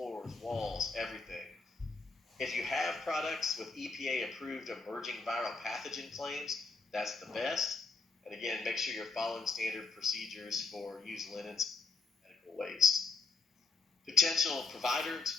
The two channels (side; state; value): right; quieter; 4.2 dB